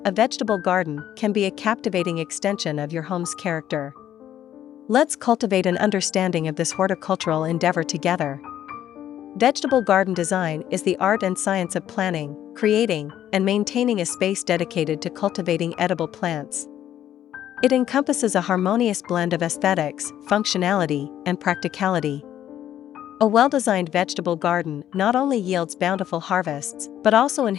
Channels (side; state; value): right; quieter; 11.2 dB